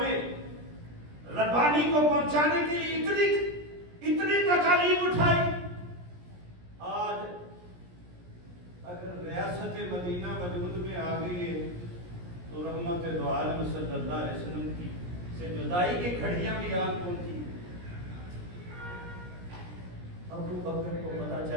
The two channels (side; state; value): left; late; 17 ms